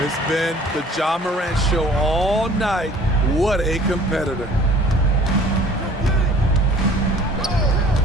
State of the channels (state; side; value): normal; both; correlation 0.50